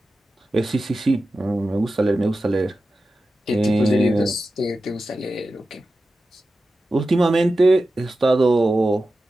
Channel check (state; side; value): normal; both; correlation 0.93